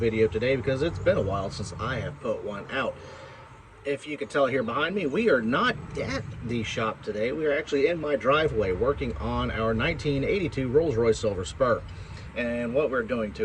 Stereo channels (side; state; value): both; identical; correlation 1.00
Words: today because it's been a while since I have put one out. If you can tell here behind me, we are not at the shop today. We are actually in my driveway working on our 1982 Rolls-Royce Silver Spur. And what we're doing